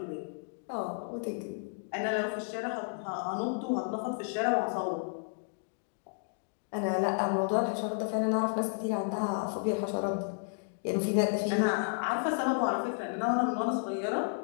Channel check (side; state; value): right; silent; digital silence